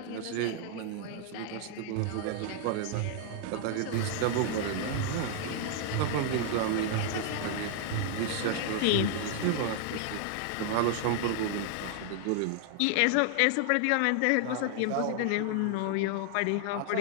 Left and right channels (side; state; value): both; different; correlation 0.00